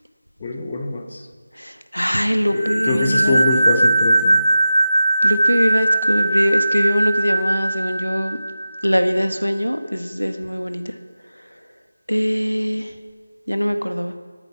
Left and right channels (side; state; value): both; inverted; correlation -0.93